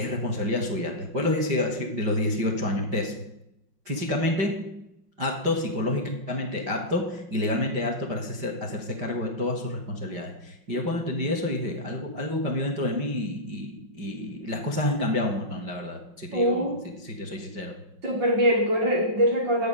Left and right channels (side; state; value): left; late; 5.6 ms